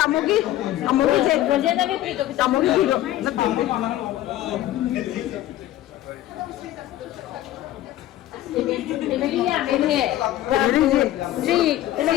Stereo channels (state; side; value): quieter; right; 14.0 dB